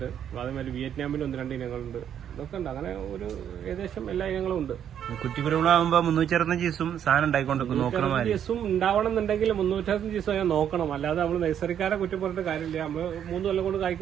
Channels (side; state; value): left; quieter; 9.3 dB